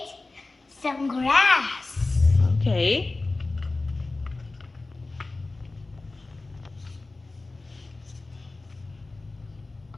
some grass. Okay.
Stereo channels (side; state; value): right; quieter; 3.3 dB